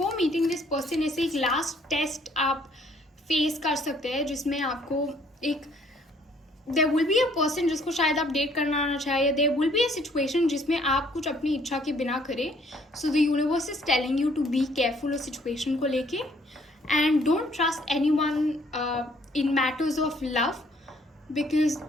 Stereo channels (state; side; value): normal; both; correlation 0.63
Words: मीटिंग दिस पर्सन ऐसे एक लास्ट टेस्ट आप फेस कर सकते हैं जिसमें आपको एक there will be a person जिसको शायद आप डेट करना ना चाहे, या there will be a situation जिसमें आप कुछ अपनी इच्छा के बिना करें। So the universe is telling you to be careful उस सिचुएशन को लेके। And don't trust anyone in matters of love, because